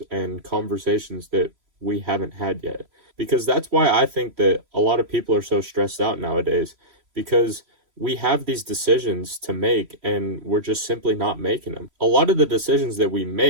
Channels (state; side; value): late; left; 3.0 ms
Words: and conversations that we haven't had yet. Because that's why I think that a lot of people are so stressed out nowadays, because we have these decisions to make and we're just simply not making them. A lot of the decisions that we